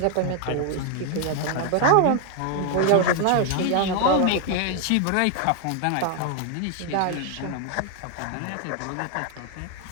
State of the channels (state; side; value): different; both; correlation 0.00